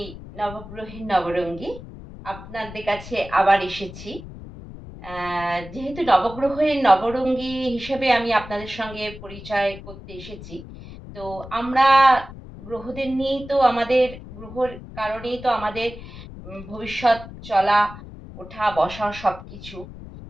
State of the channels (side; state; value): left; noise; rumble, 14 dB below the sound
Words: নবগ্রহের নবরঙ্গী। আপনাদের কাছে আবার এসেছি। যেহেতু নবগ্রহের নবরঙ্গী হিসেবে আমি আপনাদের সঙ্গে পরিচয় করতে এসেছি। তো আমরা গ্রহদের নিয়েই তো আমাদের গ্রহর কারণেই তো আমাদের ভবিষ্যৎ চলা, ওঠা, বসা সবকিছু।